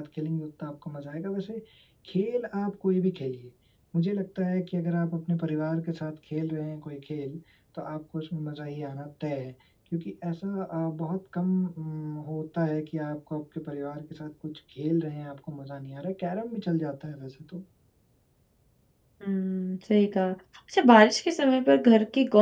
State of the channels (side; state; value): both; identical; correlation 1.00